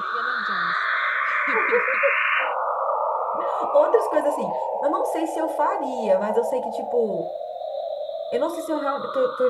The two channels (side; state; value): both; identical; correlation 1.00